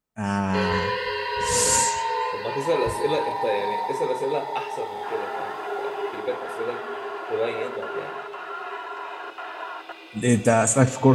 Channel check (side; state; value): both; identical; correlation 1.00